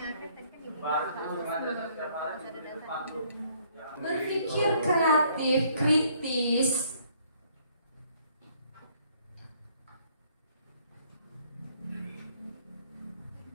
Berpikir kreatif, kritis.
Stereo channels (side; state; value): both; inverted; correlation -0.64